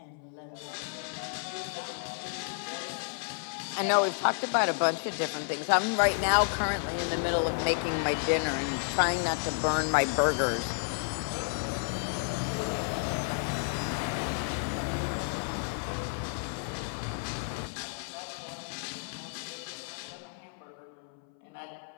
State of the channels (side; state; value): right; silent; 57 dB below the other